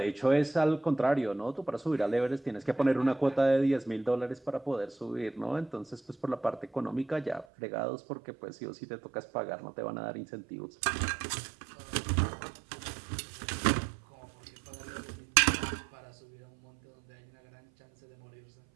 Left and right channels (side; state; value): left; drops out; at 7.5 s